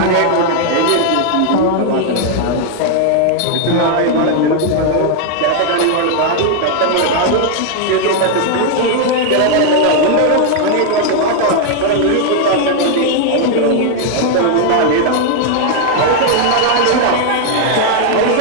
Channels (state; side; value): different; both; correlation 0.00